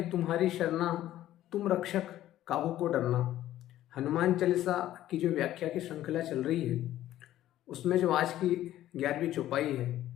तुम्हारी शरणा, तुम रक्षक काहू को डरना। हनुमान चालीसा की जो व्याख्या की श्रृंखला चल रही है उसमें जो आज की 11वीं चौपाई है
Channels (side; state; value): right; quieter; 13.5 dB